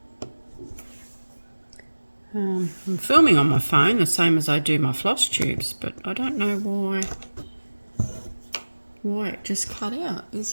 I'm filming on my phone the same as I do my floss tubes, but I don't know why it just cut out.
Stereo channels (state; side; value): inverted; both; correlation -1.00